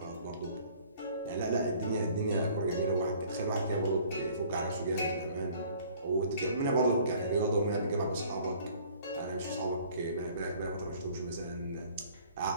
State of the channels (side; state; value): both; inverted; correlation -0.54